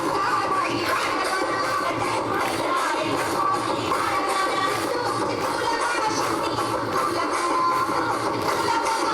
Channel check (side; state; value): both; identical; correlation 1.00